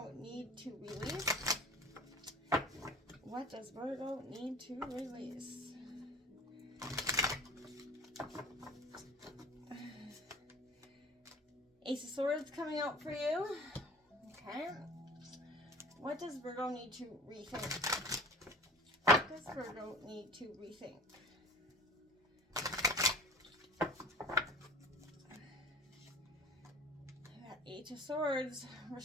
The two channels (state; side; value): normal; both; correlation 0.41